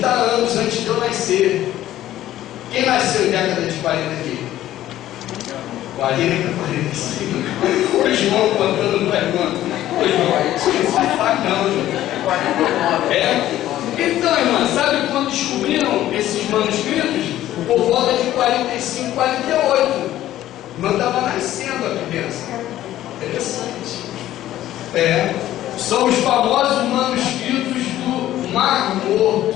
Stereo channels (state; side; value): quieter; right; 13.5 dB